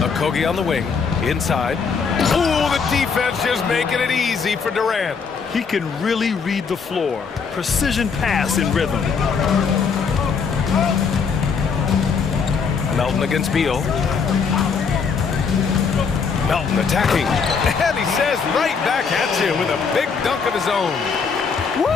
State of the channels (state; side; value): quieter; right; 5.7 dB